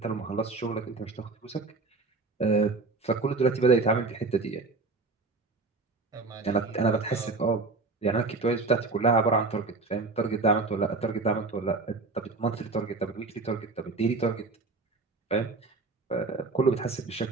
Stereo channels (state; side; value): quieter; left; 3.8 dB